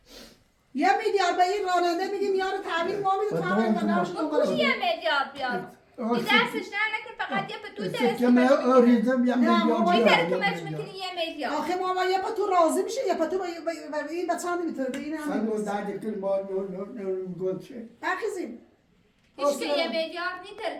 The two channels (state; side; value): identical; both; correlation 1.00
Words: 1 میلیارد به این راننده میگیم یارو تعمیر ما میده تعمیر و نمش دنبالش 1 میلیارد بیاد این دستش نه نکن فقط یه پتوی درست که من آریزم یه نه، ما میلیارد این بیارم. طرف میکنی 1 میلیارد آخه ما یه پتو راضی میشه یه پتو به این بچه هم نمیتونه به این سن هم و درد کل ما نور گل چه بخیزیم هیچ که 1 میلیارد نی